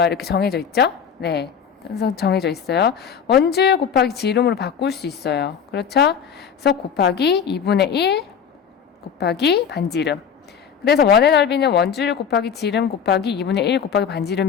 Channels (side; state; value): right; quieter; 7.4 dB